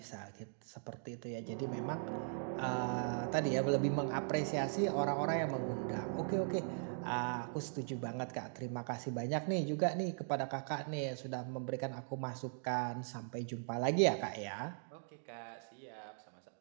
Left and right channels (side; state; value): left; silent; digital silence